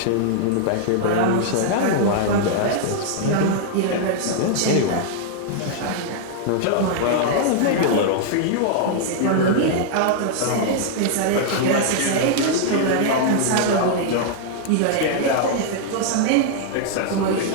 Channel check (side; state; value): both; different; correlation -0.01